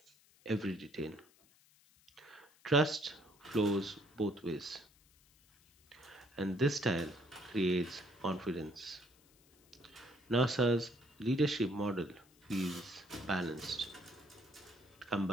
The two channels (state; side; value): noise; left; hiss, 29 dB below the sound